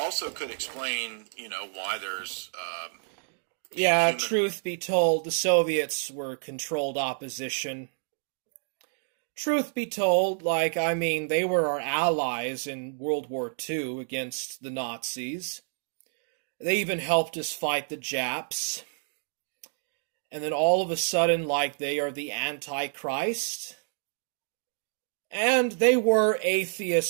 could explain, why there's. Truth be told, the Soviets were controlled opposition. Truth be told, they were our allies in World War II against the Nazis. They even helped us fight the Japs. And then all of a sudden, they are the Antichrist. And they were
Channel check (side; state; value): left; silent; 59 dB below the other